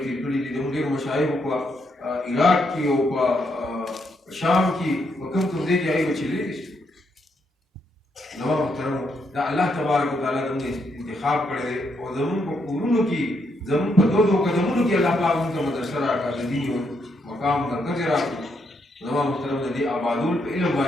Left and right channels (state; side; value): normal; both; correlation 0.77